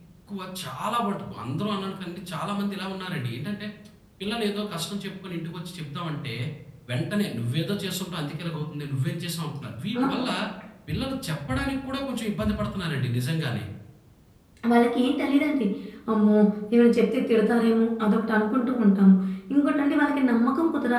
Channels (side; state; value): both; identical; correlation 1.00